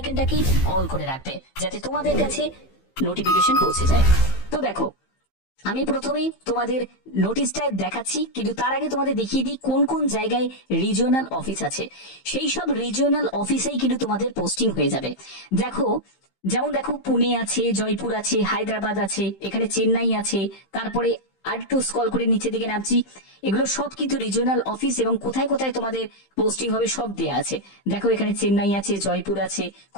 অল করে রাখবে, যাতে তোমাদের কাছে নোটিফিকেশন পৌঁছে যায়। তো দেখো, আমি প্রথমে তোমাদের নোটিশটা দেখাচ্ছি, কিন্তু তার আগে তোমাদের দেখিয়ে দিই কোন কোন জায়গায় রিজিওনাল অফিস আছে। সেই সব রিজিওনাল অফিসেই কিন্তু তোমাদের পোস্টিং হয়ে যাবে। দেখো, যেমন দেখো, পুনে আছে, জয়পুর আছে, হায়দ্রাবাদ আছে, এখানে চেন্নাই আছে, তারপরে আর একটু স্ক্রল করে নিচে দিকে নামছি, এগুলো সব কিন্তু রিজিওনাল অফিস, এবং কোথায় কোথায় তোমাদের পোস্টিং হবে সব দেয়া আছে। দেখো, এখানে চেন্নাই আছে, জয়পুর আছে,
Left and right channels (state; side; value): late; right; 15 ms